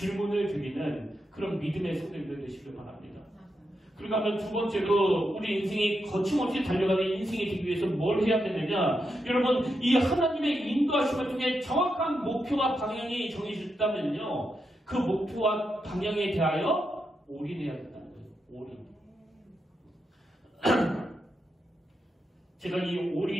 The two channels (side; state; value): both; normal; correlation 0.85